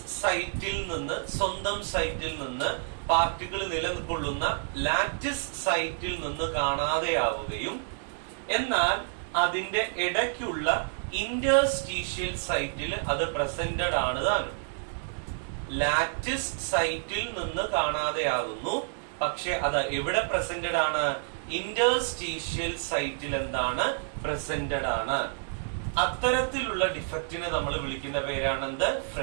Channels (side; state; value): left; silent; digital silence